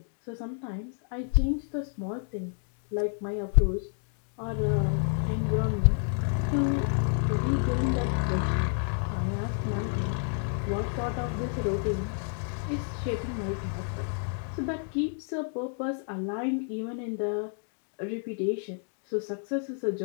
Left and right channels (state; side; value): silent; right; 55 dB below the other